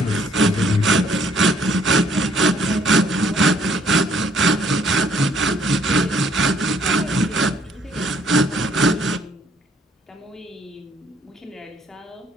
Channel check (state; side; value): normal; both; correlation 0.64